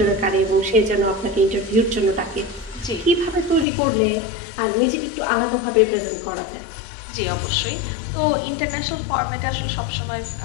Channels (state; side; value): drops out; right; at 3.7 s